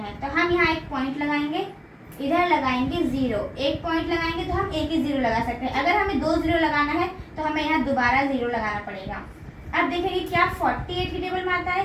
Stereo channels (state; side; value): identical; both; correlation 1.00